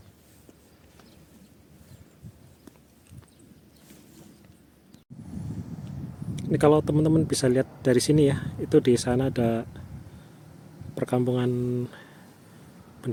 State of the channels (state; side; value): identical; both; correlation 1.00